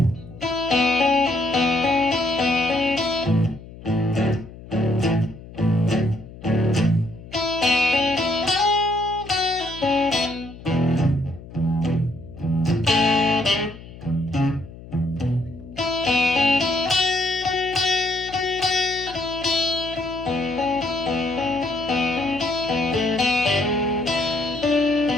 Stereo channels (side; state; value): left; noise; hum, 17 dB below the sound